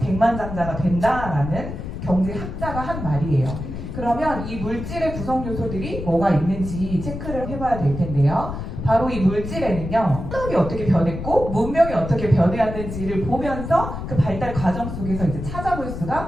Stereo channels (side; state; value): left; noise; rumble, 7 dB below the sound